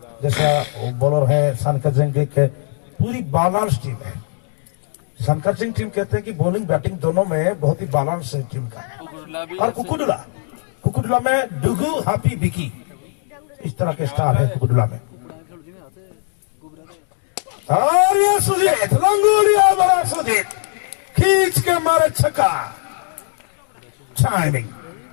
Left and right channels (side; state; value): right; silent; 61 dB below the other